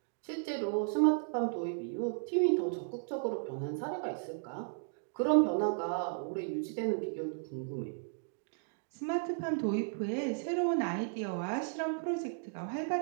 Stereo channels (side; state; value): left; silent; digital silence